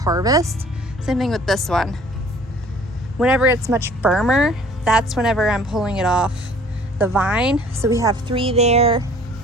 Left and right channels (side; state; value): both; normal; correlation 0.52